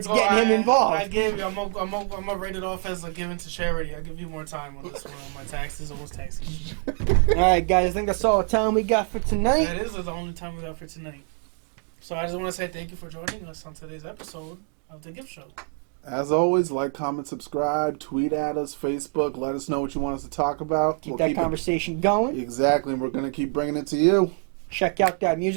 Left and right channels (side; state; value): left; quieter; 39.9 dB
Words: getting him involved. I gave you. I'm gonna rate it off as a given to charity. I'll give you more time on this one. On my taxes, almost taxes. All right, guys. I think that's all the time we got for tonight. That is the only time we got for tonight. So I just want to say thank you for joining us on today's episode of the Giv Show. As always, like, comment, subscribe, tweet at us, Facebook. Let us know what you want us to talk about. Keep that conversation going. Exactly, and we're going to keep bringing it to you. Check out that